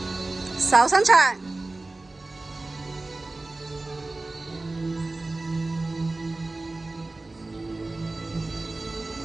手伸長、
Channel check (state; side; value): quieter; left; 3.1 dB